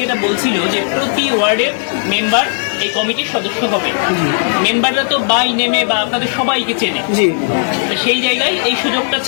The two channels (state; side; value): silent; right; digital silence